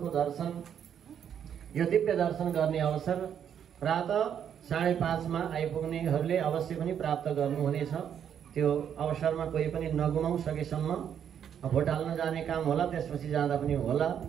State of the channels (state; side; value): quieter; left; 8.7 dB